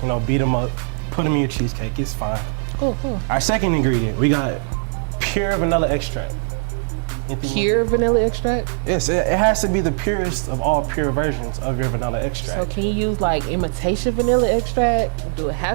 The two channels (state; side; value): silent; left; digital silence